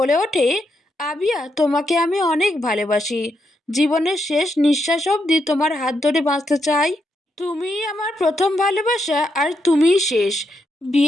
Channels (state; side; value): normal; both; correlation 0.81